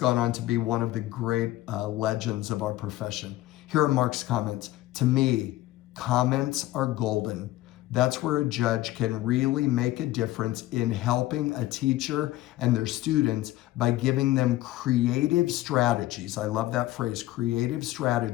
on to be one of the great legends of our profession. Here are Mark's comments. To me, comments are golden. That's where a judge can really make a difference in helping a teacher and their students by giving them creative strategies. I love that phrase, creative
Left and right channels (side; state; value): right; quieter; 16.2 dB